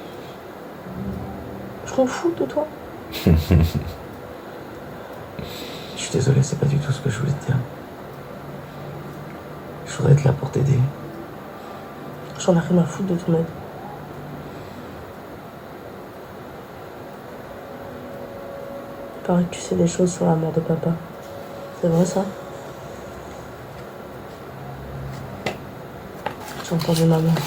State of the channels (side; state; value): both; identical; correlation 1.00